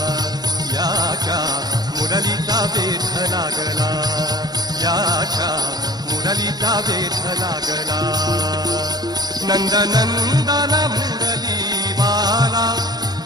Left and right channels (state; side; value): late; left; 0.19 ms